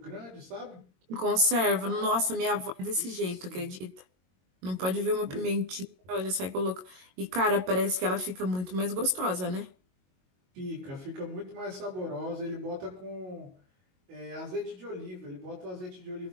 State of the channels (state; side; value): late; left; 22 ms